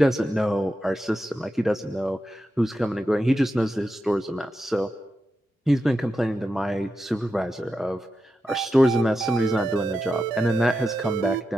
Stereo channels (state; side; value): normal; both; correlation 0.89